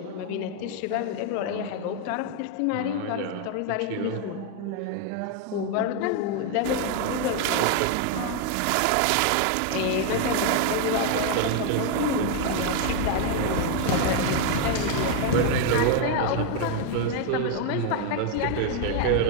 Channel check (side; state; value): both; different; correlation 0.01